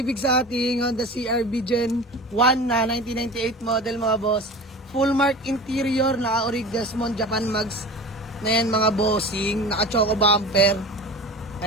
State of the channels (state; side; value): normal; both; correlation 0.35